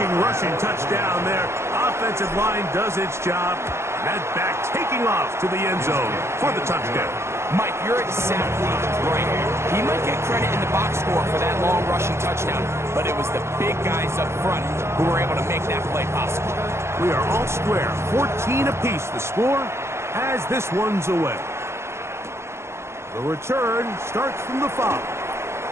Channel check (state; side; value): late; left; 0.13 ms